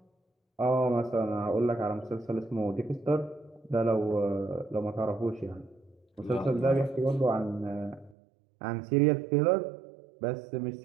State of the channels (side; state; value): left; drops out; at 8.2 s